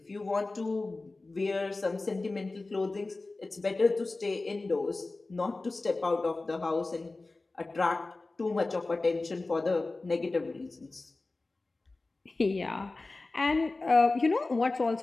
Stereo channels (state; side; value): quieter; right; 3.3 dB